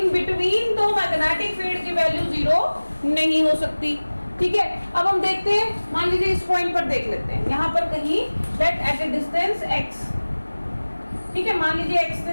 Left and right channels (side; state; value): both; inverted; correlation -1.00